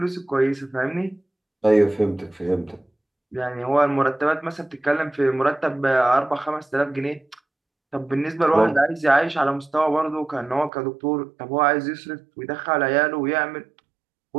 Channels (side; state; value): left; drops out; at 10.7 s